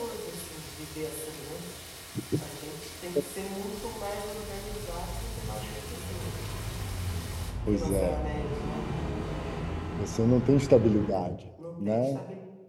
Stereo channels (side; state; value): both; identical; correlation 1.00